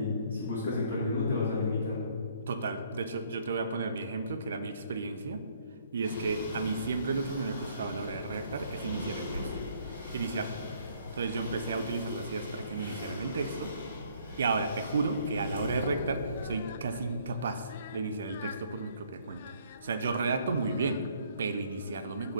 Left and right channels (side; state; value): both; inverted; correlation -0.64